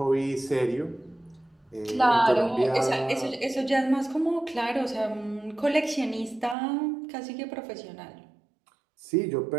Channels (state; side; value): drops out; left; at 6.6 s